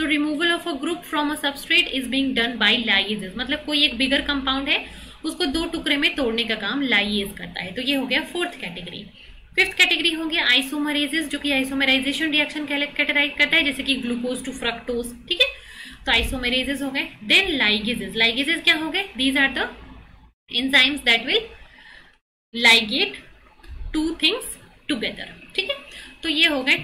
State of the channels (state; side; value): identical; both; correlation 1.00